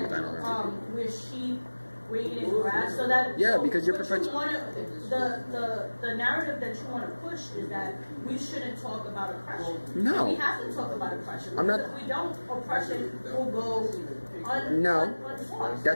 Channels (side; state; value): both; inverted; correlation -1.00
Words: we're sheep, we're eating grass, so that because you're perpetuating the narrative that you want to push is that we shouldn't talk about oppression. No, we have to talk about oppression. I'm not. If we don't, oppression will go.